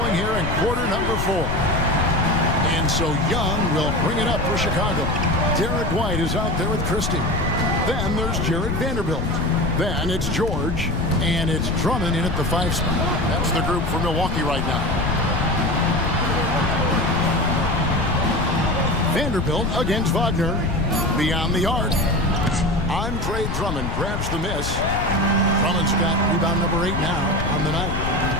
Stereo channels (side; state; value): left; noise; rumble, 2 dB below the sound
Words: here in quarter number 4. And so Young will bring it up for Chicago. Derek White is out there with Christie. Then there's Jarred Vanderbilt. Then it's George, and it's Drummond in at the 5 spot. That's the group for Milwaukee right now. Vanderbilt against Wagner. Beyond the arc. Andre Drummond grabs the miss. Drummond's got rebound number 8 now on the night.